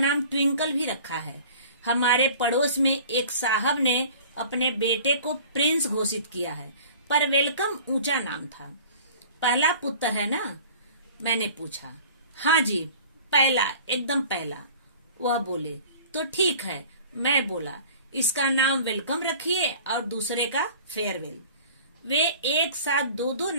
ट्विंकल भी रखा है। हमारे पड़ोस में एक साहब ने अपने बेटे को प्रिंस घोषित किया है, पर वेलकम ऊंचा नाम था। पहला पुत्र है ना? मैंने पूछा। हाँ जी, पहला, एकदम पहला। वह बोले, तो ठीक है। मैं बोला, इसका नाम वेलकम रखिए और दूसरे का फेयरवेल। वे एक साथ दो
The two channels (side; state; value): both; inverted; correlation -0.45